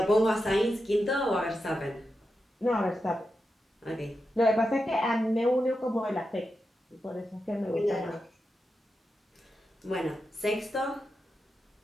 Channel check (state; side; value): normal; both; correlation 0.89